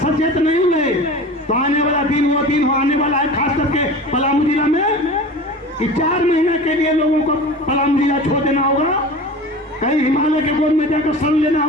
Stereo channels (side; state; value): both; normal; correlation 0.36